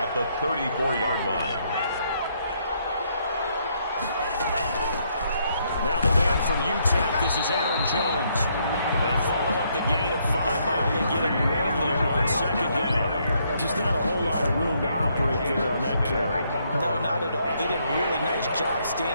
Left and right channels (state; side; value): inverted; both; correlation -0.72